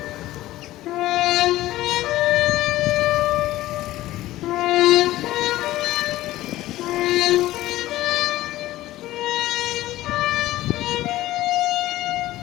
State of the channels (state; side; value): quieter; right; 15.9 dB